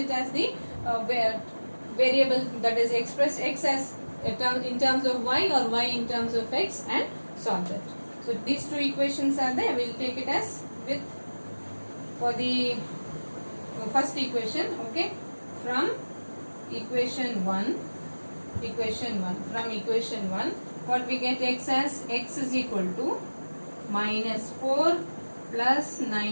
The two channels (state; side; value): inverted; both; correlation -1.00